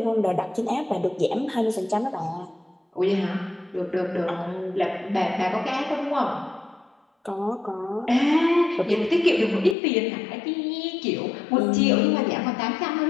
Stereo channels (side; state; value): right; drops out; at 9.8 s